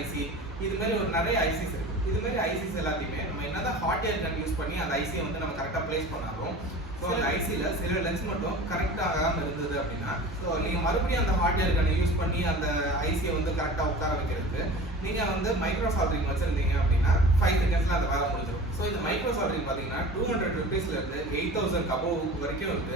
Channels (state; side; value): normal; both; correlation 0.37